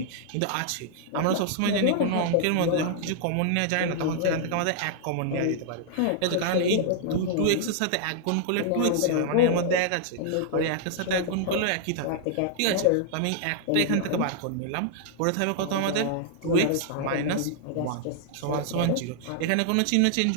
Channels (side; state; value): both; different; correlation -0.01